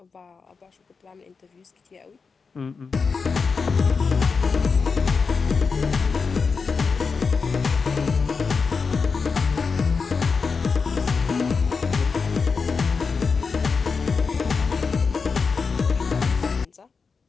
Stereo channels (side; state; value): right; quieter; 5.1 dB